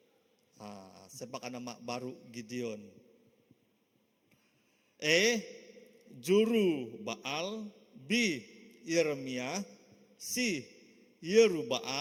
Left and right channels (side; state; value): both; identical; correlation 1.00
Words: Siapakah nama baru Gideon? Juru Baal, B. Yeremia, C.